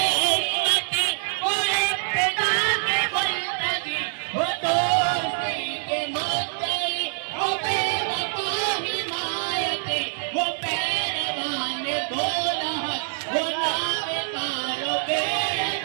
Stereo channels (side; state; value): left; silent; 62 dB below the other